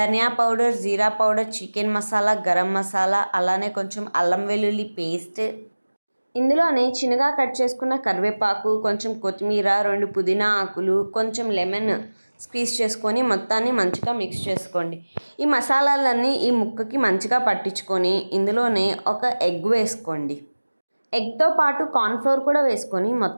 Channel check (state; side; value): inverted; both; correlation -1.00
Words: పౌడర్, జీరా పౌడర్, చికెన్ మసాలా, గరం మసాలా, అలానే కొంచెం అల్లం వెల్లుల్లి పేస్ట్, ఇందులోనే చిన్నగా కట్ చేసుకున్న కరివేపాకు, కొంచెం కొత్తిమీర, 2 పుదీనా ఆకులు, కొంచెం లెమన్ స్క్వీజ్ చేసుకొని మొత్తాన్ని మంచిగా మిక్స్ చేసుకోండి. ఈ మసాలాలన్నీ ఈ ముక్కకి మంచిగా పట్టించుకొని ఇందులోనే ఒక ఎగ్ వేసుకోండి. ఎగ్తో పాటు కార్న్‌ఫ్లోర్ కూడా వేసుకొని